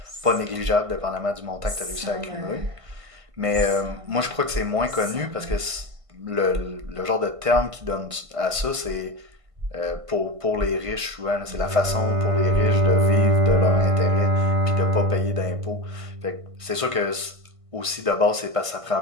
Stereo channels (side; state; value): left; late; 1.5 ms